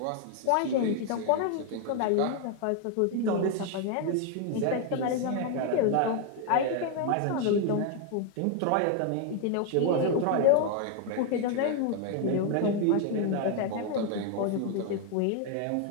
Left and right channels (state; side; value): different; both; correlation 0.00